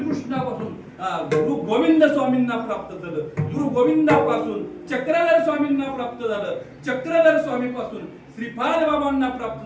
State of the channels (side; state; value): both; identical; correlation 1.00